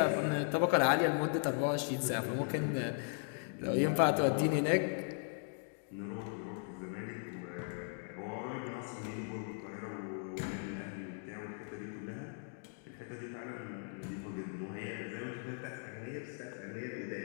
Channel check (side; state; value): right; silent; 53 dB below the other